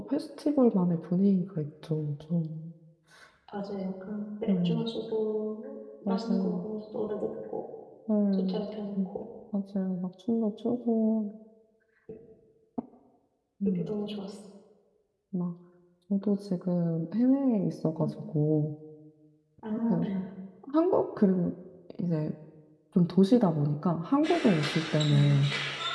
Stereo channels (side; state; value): both; identical; correlation 1.00